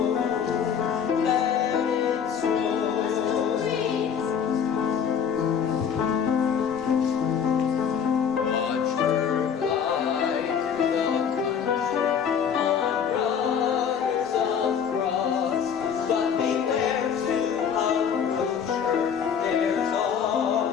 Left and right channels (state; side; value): quieter; right; 7.5 dB